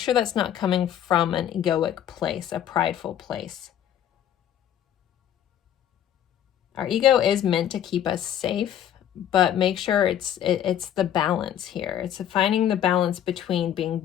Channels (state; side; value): quieter; right; 10.5 dB